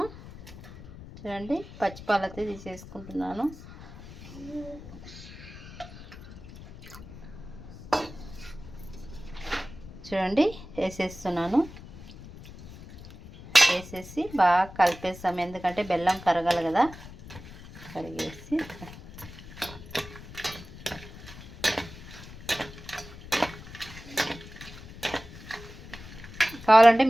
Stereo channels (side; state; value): left; noise; rumble, 15 dB below the sound